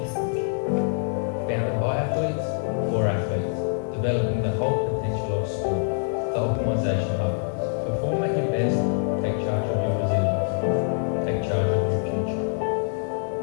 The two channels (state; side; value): silent; right; 62 dB below the other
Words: Founded by athletes, for athletes, developing the whole potential of sport. The Optimisation Hub. Perform at your best, take charge of your resilience, take charge of your future.